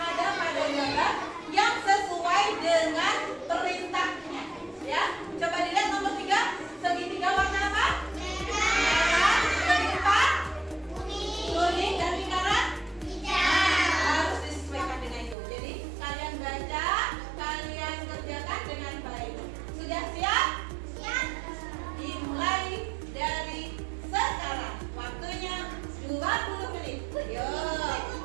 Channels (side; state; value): left; drops out; at 15.4 s